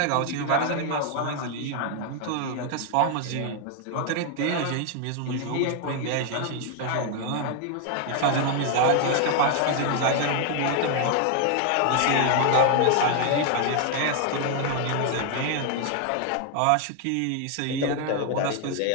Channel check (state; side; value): different; both; correlation 0.00